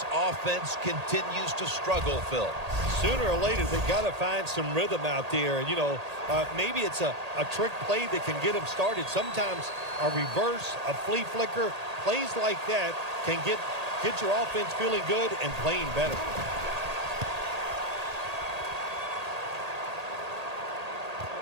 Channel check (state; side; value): late; left; 1.8 ms